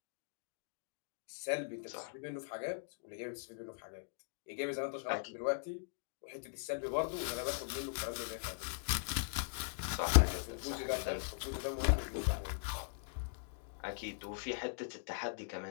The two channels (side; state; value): right; silent; digital silence